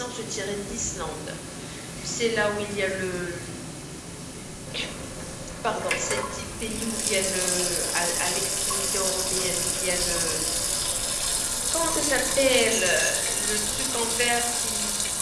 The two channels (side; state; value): both; identical; correlation 1.00